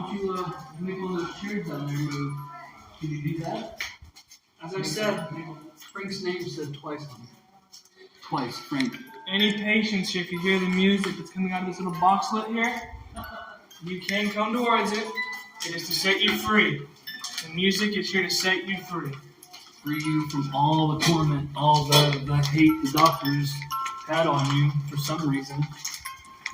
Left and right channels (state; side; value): identical; both; correlation 1.00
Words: you, make one of those chairs down there move? Can you do that? As I said, Frank's name said twice on it. Twice, Frank. any patients here, if you hear the music that's coming out of this little boxlet here, you can come towards it. It is to set you free. The music is here to set you free. Free you from all the torment, all the hate the doctors had on you for some reason.